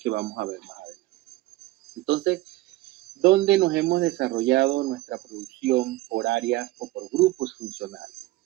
vamos a ver más adelante. Entonces, ¿dónde nos hemos desarrollado nuestra producción por áreas o por grupos funcionales?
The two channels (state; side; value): quieter; left; 17.8 dB